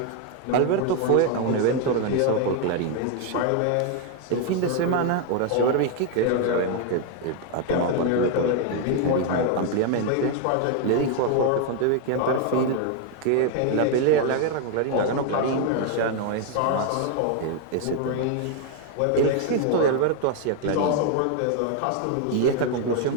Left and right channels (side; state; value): both; different; correlation 0.00